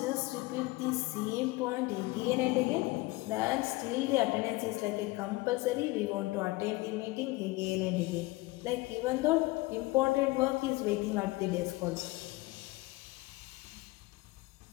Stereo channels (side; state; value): right; quieter; 21.4 dB